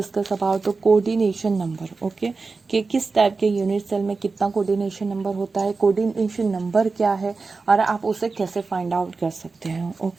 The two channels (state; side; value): quieter; left; 4.1 dB